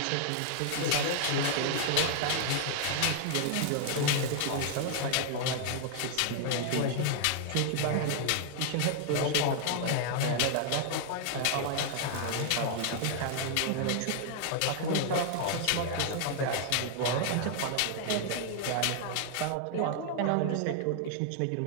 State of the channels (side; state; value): both; different; correlation 0.00